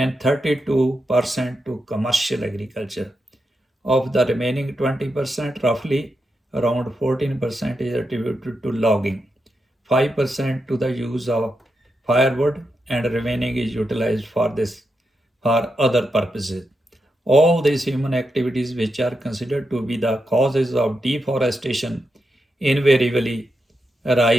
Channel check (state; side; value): normal; both; correlation 0.86